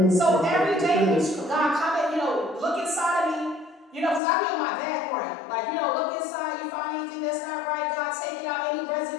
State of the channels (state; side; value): drops out; right; at 4.2 s